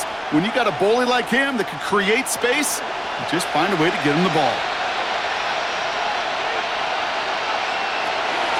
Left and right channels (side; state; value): both; identical; correlation 1.00